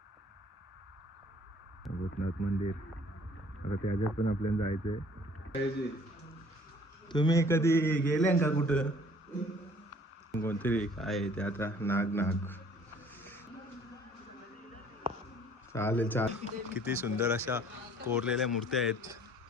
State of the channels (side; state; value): both; normal; correlation 0.55